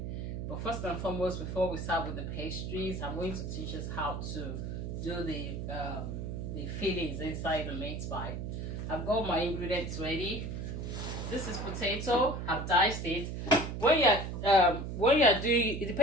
But first and foremost, before we start with the pastries, I'm going to teach us how to do the fillings inside the meat pie. I've got my ingredients ready. This is potato. I've diced it. When you're doing, it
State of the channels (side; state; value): right; noise; hum, 5 dB below the sound